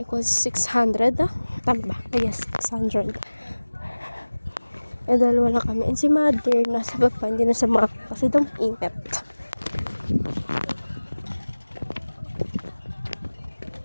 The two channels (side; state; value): both; inverted; correlation -1.00